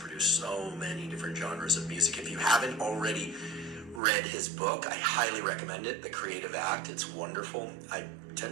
so many different genres of music. If you haven't already read his book, I highly recommend it, The Creative Act. It's wonderful. I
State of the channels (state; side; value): drops out; left; at 4.0 s